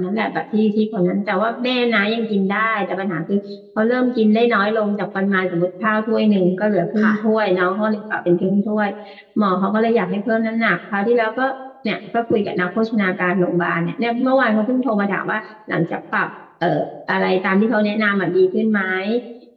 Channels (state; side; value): identical; both; correlation 1.00